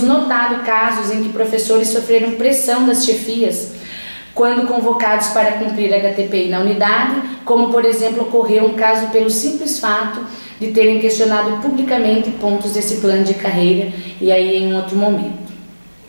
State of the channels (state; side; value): inverted; both; correlation -1.00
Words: notado casos em que professores sofreram pressão das chefias quando convocados para cumprir HTPI na unidade, como por exemplo ocorreu um caso pelo simples fato de terem questionado publicamente pontos desse plano de carreira, e aí em um outro momento.